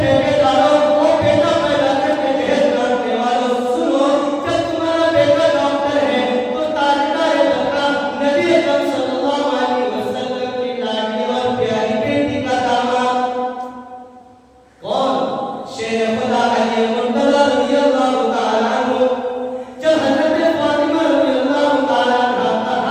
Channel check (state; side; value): identical; both; correlation 1.00